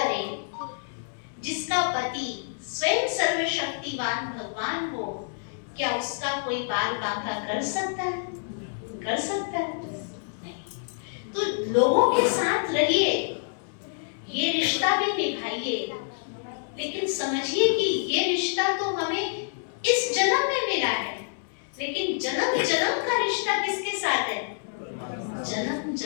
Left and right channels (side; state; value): right; silent; 60 dB below the other